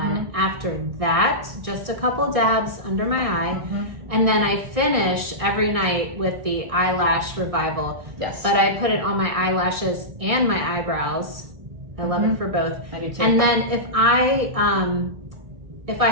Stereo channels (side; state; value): left; late; 1.6 ms